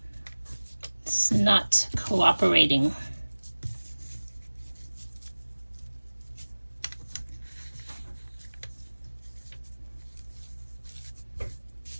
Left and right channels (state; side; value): inverted; both; correlation -1.00